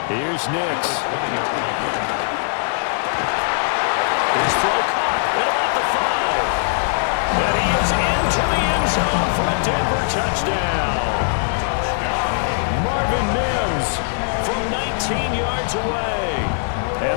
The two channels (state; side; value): silent; right; digital silence